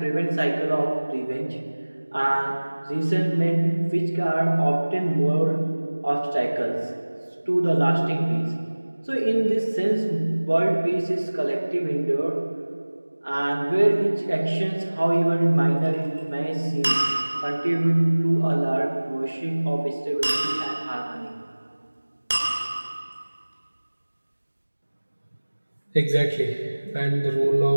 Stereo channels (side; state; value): both; inverted; correlation -1.00